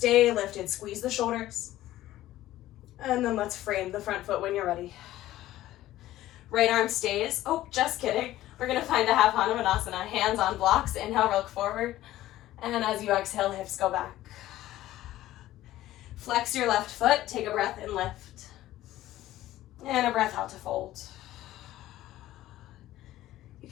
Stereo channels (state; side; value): quieter; right; 14.8 dB